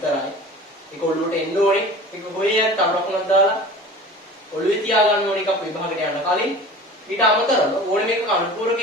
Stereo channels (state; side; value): normal; both; correlation 0.39